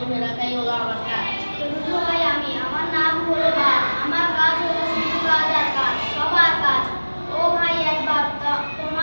রাখাই হলো আমার কাজ। চতুর্থ ভাই আমি, আমার নাম হলো বা, আমার কাজ হলো শুধু কাজ আর কাজ, সবার কাজ। ও ভাই একবার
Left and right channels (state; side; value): inverted; both; correlation -1.00